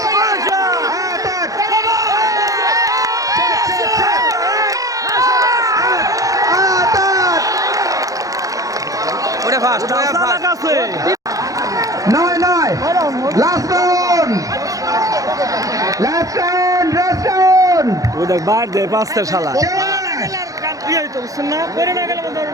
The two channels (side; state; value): left; late; 0.17 ms